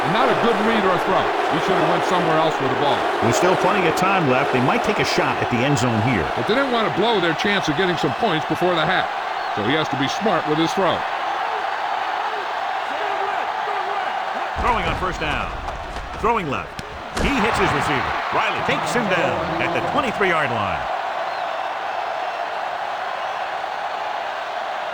And not a good read or a throw. He should have went somewhere else with the ball. With still plenty of time left, they might take a shot at the end zone here. But they didn't want to blow their chance of getting some points before the half. So he has to be smart with his throw. Throwing on first down. Throwing left. He hits his receiver. Riley takes him down at the 23-yard line.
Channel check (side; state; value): both; identical; correlation 1.00